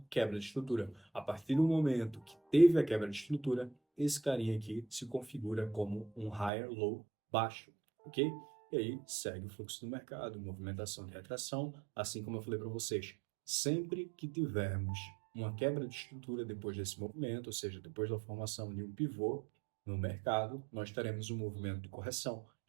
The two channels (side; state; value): left; drops out; at 6.5 s